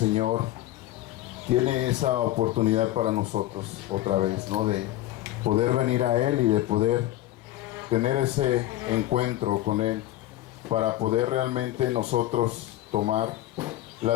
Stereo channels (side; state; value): right; quieter; 15.0 dB